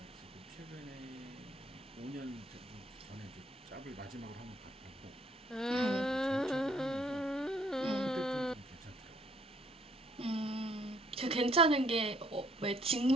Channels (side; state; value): both; normal; correlation 0.64